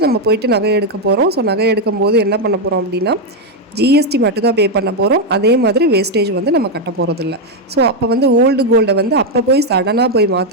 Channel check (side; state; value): both; normal; correlation 0.02